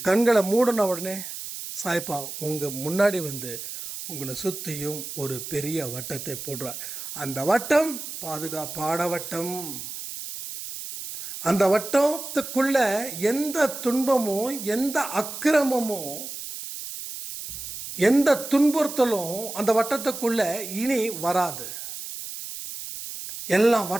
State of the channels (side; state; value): right; noise; hiss, 9 dB below the sound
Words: கண்களை மூடின உடனே சாய்ப்பா உங்கள் முன்னாடி வந்து உங்களை சுற்றியும் ஒரு பெரிய வட்டத்தை போடுறார். அந்த வட்டம் பாதுகாப்பான வட்டம். அந்த வட்டத்துக்குள்ள எந்த துன்பமோ எந்த அக்கிரமமோ எந்த துன்புறுத்தலும் அந்த வட்டத்துக்குள்ள இனி வராது. எல்லாம்